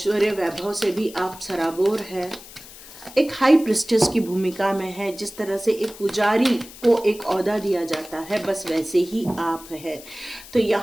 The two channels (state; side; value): noise; left; hiss, 17 dB below the sound